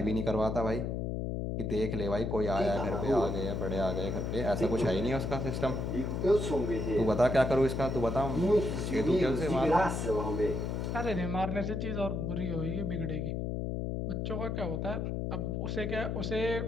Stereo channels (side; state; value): left; noise; hum, 2 dB below the sound